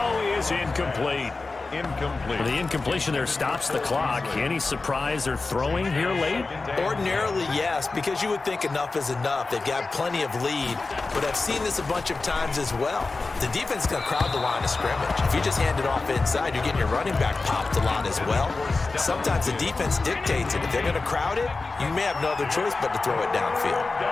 is incomplete. Incomplete. The incompletion there stops the clock. Any surprise they're throwing here late? Ordinarily, yes, because you would think enough is enough. They've got plenty of lead, but I've seen this a bunch of times as well. The defense is going to crowd the line of scrimmage. If you just hand it off inside, you're getting your running back popped a lot as well. Sometimes the defense dictates it. If they're going to crowd it, you may have no other choice but to throw it downfield.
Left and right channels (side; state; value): right; quieter; 3.7 dB